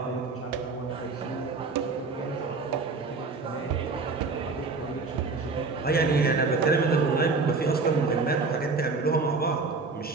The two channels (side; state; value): left; quieter; 4.1 dB